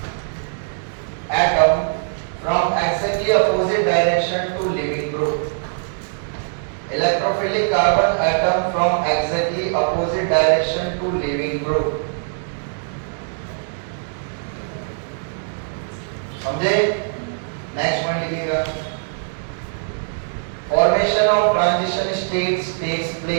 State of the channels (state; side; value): silent; left; digital silence